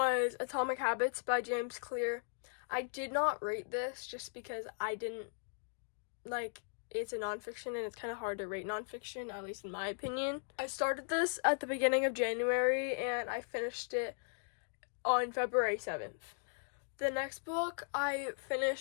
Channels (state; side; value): silent; right; digital silence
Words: Atomic Habits by James Clear. I did not rate this just because I didn't it's a nonfiction and it's kind of hard to rate nonfiction, at least in my opinion. I started this at the beginning of January and I finished it on February 7th. The next book I